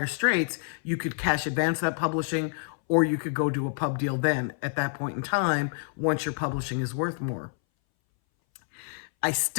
straits, you could cash advance that publishing, or you could go do a pub deal then at that point in time once your publishing is worth more. I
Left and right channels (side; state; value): right; silent; 60 dB below the other